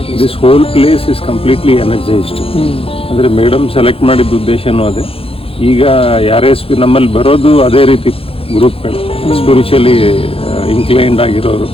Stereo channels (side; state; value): right; late; 0.27 ms